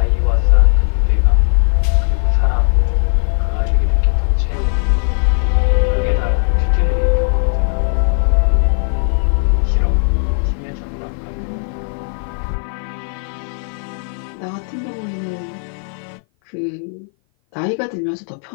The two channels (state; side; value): silent; right; 57 dB below the other